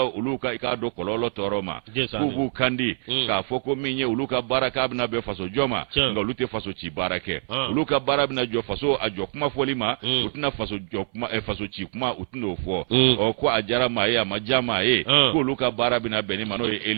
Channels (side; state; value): left; silent; 58 dB below the other